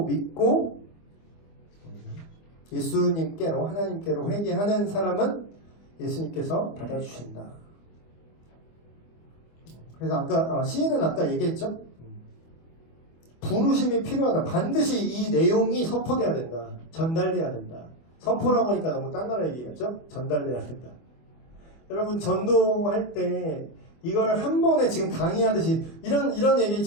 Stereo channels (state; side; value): late; right; 25 ms